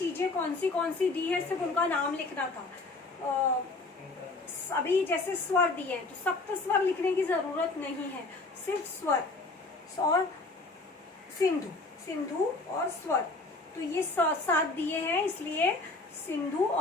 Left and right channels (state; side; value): quieter; right; 3.4 dB